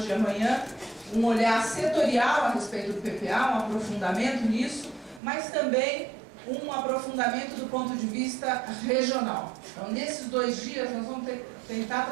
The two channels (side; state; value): left; drops out; at 5.2 s